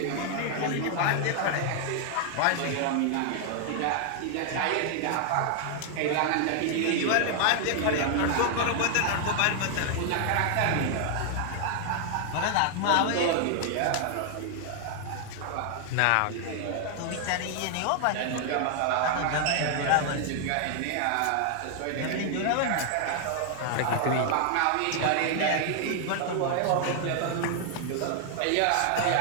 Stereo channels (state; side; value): different; both; correlation 0.00